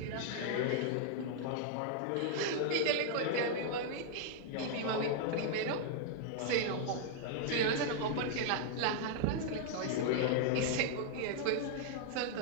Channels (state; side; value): different; both; correlation -0.01